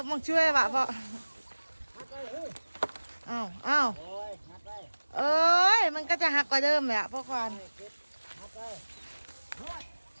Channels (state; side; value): inverted; both; correlation -1.00